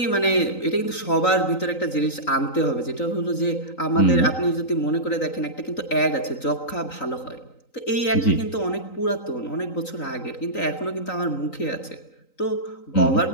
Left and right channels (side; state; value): right; late; 3.9 ms